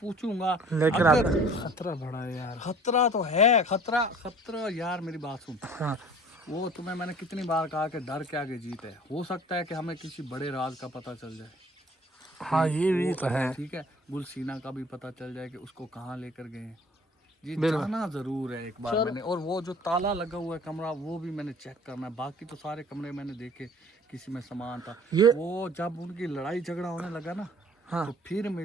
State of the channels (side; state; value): both; normal; correlation 0.50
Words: پوچھوں گا. لیکن اگر خطرہ بڑا ہے یار, خطرہ تو ہے, خطرہ یار, میری بات سن, ہاں وہ تمہیں میں نے کتنی بار کہا کہ ڈر کے آگے جیت ہے. ہو سکتا ہے کہ ہمیں کسی بڑے راز کا پتہ چل جائے, ہاں یہ بھی تو ہے. ٹھیک ہے, گلسینہ کا بھی پتہ چل جائے کہ اس کو کہاں لے کر گئے ہیں. جی بالکل. جانا ضرور ہے ایک بار میں نے, اور وہ جو تالا لگا ہوا ہے کمرہ وہ بھی میں نے چیک کرنا ہے. باقی تو سارے کمرے میں نے دیکھے, کسی میں سامان تھا. وہ جب ان کی لڑائی جھگڑا ہونے لگا نا تو پھر